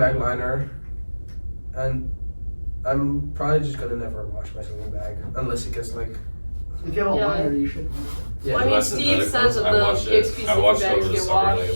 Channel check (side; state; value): both; inverted; correlation -1.00